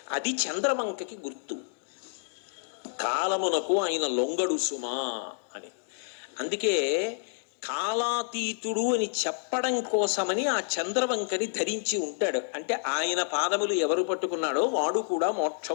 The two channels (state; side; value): silent; right; digital silence